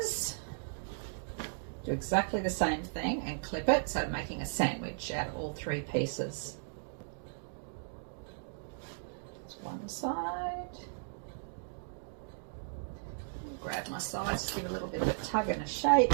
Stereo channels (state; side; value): silent; left; digital silence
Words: do exactly the same thing and clip it, so making a sandwich out of all 3 pieces. That's one side. Grab my sides, just give a little bit of a tug and a shake.